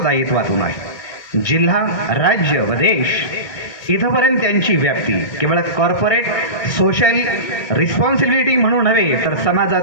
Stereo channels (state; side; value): late; right; 1.6 ms